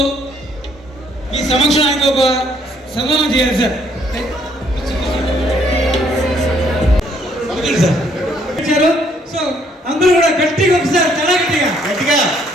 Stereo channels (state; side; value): normal; both; correlation 0.67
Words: మీ సమక్షం ఆయనకు ఒక సన్మానం చేయాలి సార్. సార్ సో అందరూ కూడా గట్టిగా ఒకసారి చాలా గట్టిగా గట్టిగా